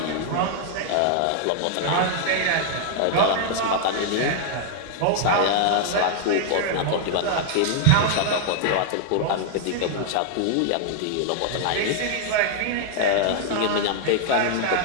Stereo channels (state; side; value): different; both; correlation 0.00